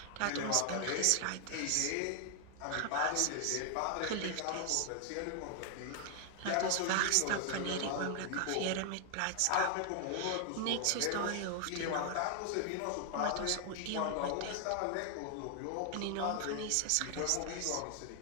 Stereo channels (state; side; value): different; both; correlation 0.00